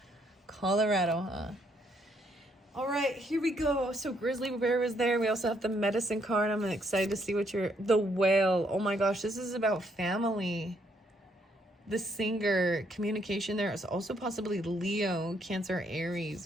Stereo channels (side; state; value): both; normal; correlation 0.71